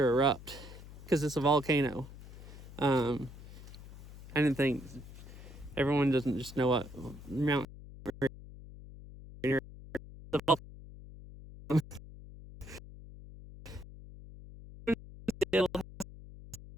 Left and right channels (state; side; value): noise; left; hum, 16 dB below the sound